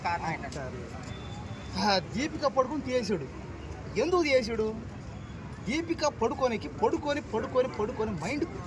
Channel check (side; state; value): both; identical; correlation 1.00